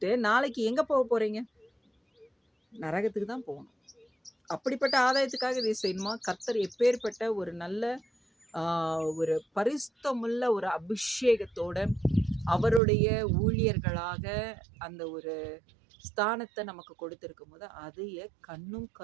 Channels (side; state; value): left; drops out; at 12.8 s